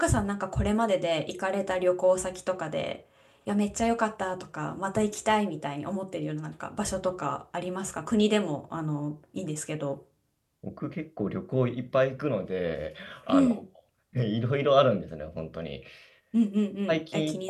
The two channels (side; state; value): both; identical; correlation 1.00